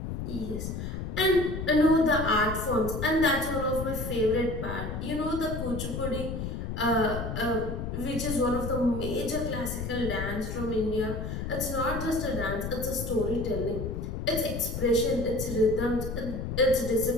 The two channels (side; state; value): left; noise; rumble, 5 dB below the sound